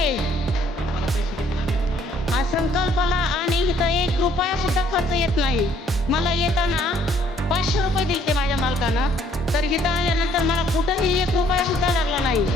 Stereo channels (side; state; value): both; normal; correlation 0.63